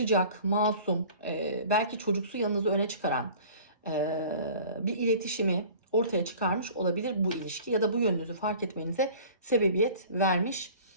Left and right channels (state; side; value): inverted; both; correlation -0.45